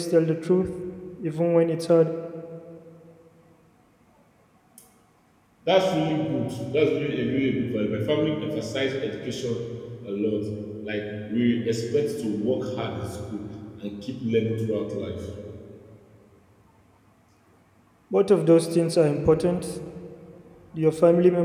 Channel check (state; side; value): identical; both; correlation 1.00